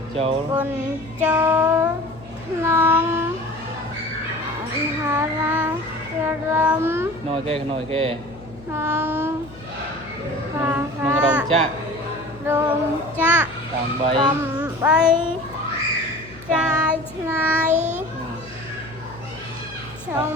châu quần châu non hà ra râm nồi kê non hà nông rồng chạ tạm bấy trai này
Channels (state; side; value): noise; left; hum, 19 dB below the sound